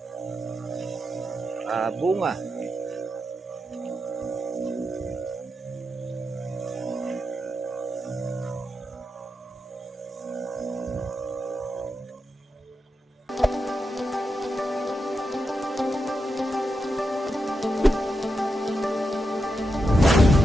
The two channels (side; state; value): both; normal; correlation 0.87